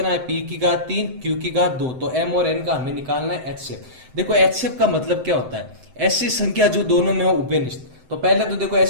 है, p की घात 3 q की घात 2, तो m और n का हमें निकालना है एचसीएफ। देखो एचसीएफ का मतलब क्या होता है, ऐसी संख्या जो दोनों में हो उभयनिष्ठ। तो पहले तो देखो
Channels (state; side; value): late; left; 7.8 ms